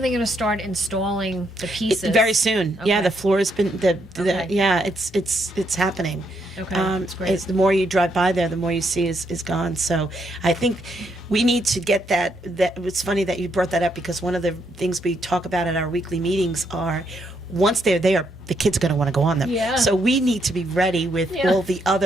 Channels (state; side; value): normal; both; correlation 0.76